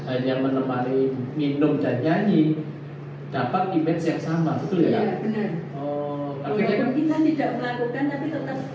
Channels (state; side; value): identical; both; correlation 1.00